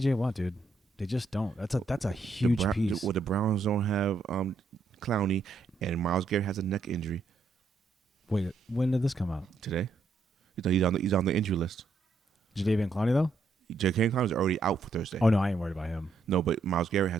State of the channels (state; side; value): quieter; left; 3.6 dB